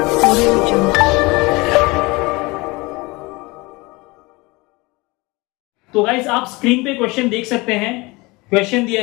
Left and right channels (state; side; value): quieter; right; 24.0 dB